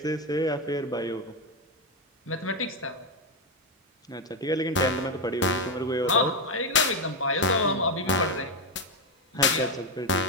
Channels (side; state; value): both; normal; correlation 0.07